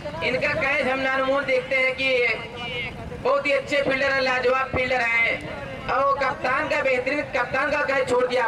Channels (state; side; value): identical; both; correlation 1.00